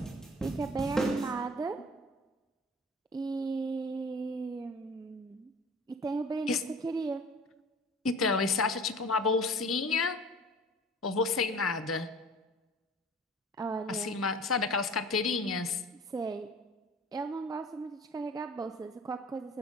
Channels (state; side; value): normal; both; correlation 0.43